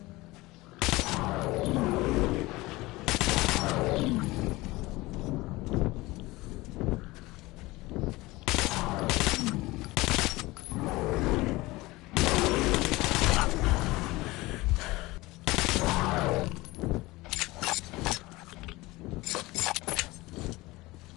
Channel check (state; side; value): quieter; right; 20.6 dB